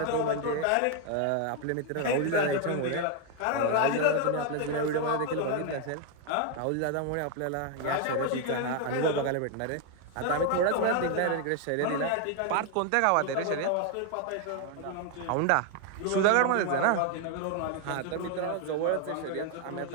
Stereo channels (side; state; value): both; different; correlation 0.01